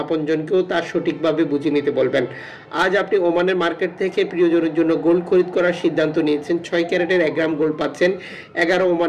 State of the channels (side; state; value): both; identical; correlation 1.00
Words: আপনজনকেও তা সঠিকভাবে বুঝে নিতে বলবেন। আজ আপনি ওমানের মার্কেট থেকে প্রিয়জনের জন্য গোল্ড খরিদ করার সিদ্ধান্ত নিয়েছেন। 6 ক্যারেটের 1 গ্রাম গোল্ড পাচ্ছেন 11